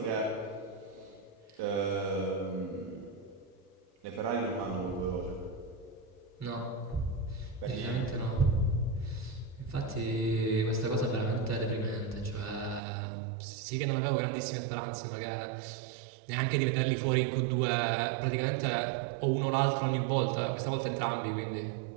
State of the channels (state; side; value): drops out; left; at 12.8 s